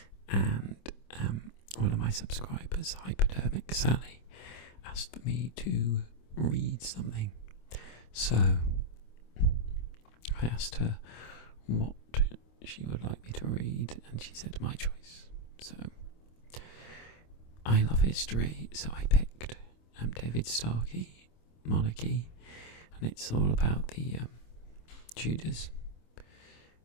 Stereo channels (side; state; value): right; late; 26 ms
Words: and one of my subscribers, Hypodermic Sally, asked for me to read something. So I asked her what she would like me to read and she said my choice. So I love history, so I picked David Starkey, Monarchy, and it's all about the Tudors